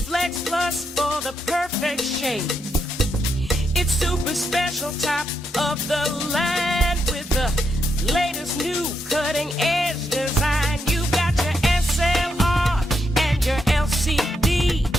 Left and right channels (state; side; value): normal; both; correlation 0.81